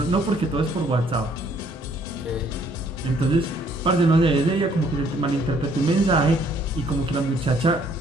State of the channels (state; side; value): normal; both; correlation 0.63